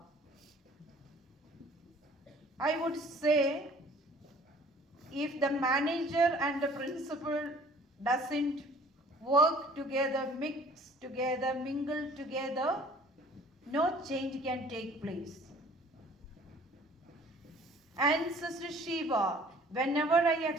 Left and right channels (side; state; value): both; normal; correlation 0.52